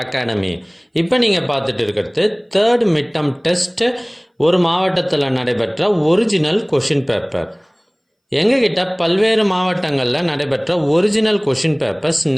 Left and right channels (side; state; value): both; identical; correlation 1.00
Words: academy. இப்போ நீங்கள் பார்த்துட்டு இருக்கிறது தேர்ட் மிட்டம் டெஸ்ட் ஒரு மாவட்டத்தில் நடைபெற்ற ஒரிஜினல் கொஷின் பேப்பர். எங்ககிட்ட பல்வேறு மாவட்டங்களில் நடைபெற்ற ஒரிஜினல் கொஷின் பேப்பர்ஸ்